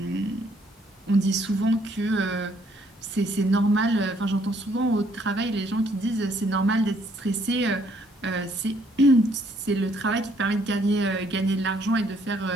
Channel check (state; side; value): normal; both; correlation 0.67